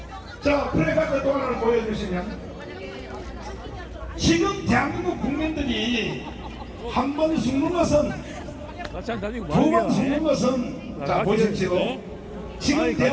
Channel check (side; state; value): both; identical; correlation 1.00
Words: 자, 플래카드 또 하나를 보여주시면 지금 대한민국 국민들이 한 번 죽는 것은 같이 안 다니고 두 번 말이야. 죽는 것은 자, 같이 보십시오. 있네. 지금 아니,